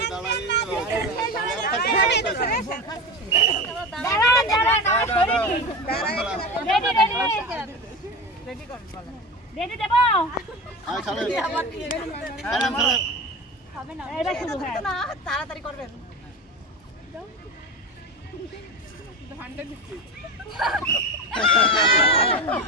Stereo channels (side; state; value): both; normal; correlation 0.26